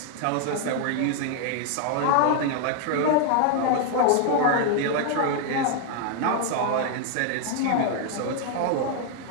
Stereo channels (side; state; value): both; different; correlation 0.00